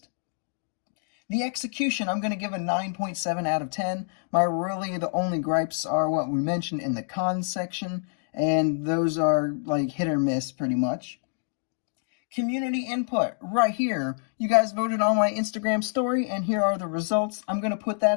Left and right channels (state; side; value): silent; right; digital silence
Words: The execution, I'm going to give a 9.7 out of 10. The only gripes are what we mentioned in the cons section, and those are like hit or miss pretty much. Community input right here. You guys voted on my Instagram story, and here are the results. I'm going to put